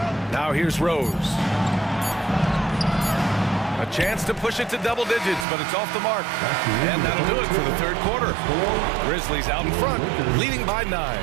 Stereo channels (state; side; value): drops out; left; at 5.5 s